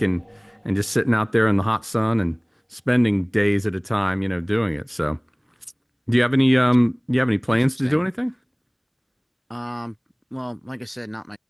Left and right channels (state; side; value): identical; both; correlation 1.00